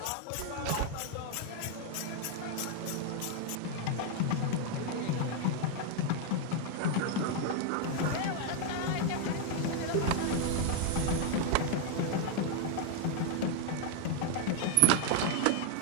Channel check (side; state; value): both; different; correlation 0.00